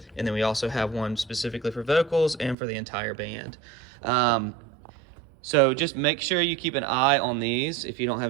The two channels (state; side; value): drops out; left; at 2.6 s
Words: And then we also have one specifically for vocals and for the entire band. So just make sure you keep an eye on these. If you don't have